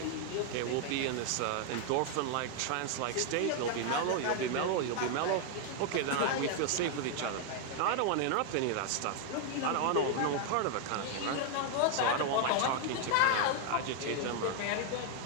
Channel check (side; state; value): both; different; correlation 0.00